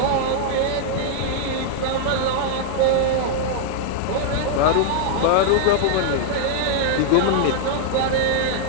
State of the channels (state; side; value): different; both; correlation -0.01